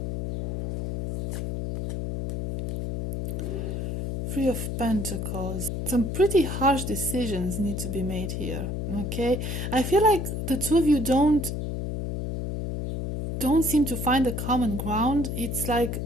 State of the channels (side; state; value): left; noise; hum, 2 dB below the sound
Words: 3 of Pentacles. Some pretty harsh decisions need to be made here, okay? I feel like the 2 of you don't seem to find a common ground. It's like